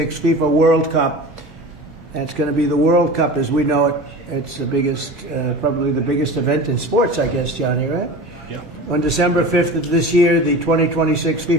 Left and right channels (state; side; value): normal; both; correlation 0.34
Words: FIFA World Cup. And it's going to be the World Cup as we know it. It's the biggest, probably the biggest event in sports, I guess, Johnny, right? Yeah. On December 5th of this year, the 2026